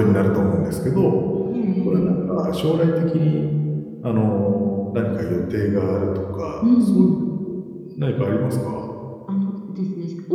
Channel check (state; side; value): identical; both; correlation 1.00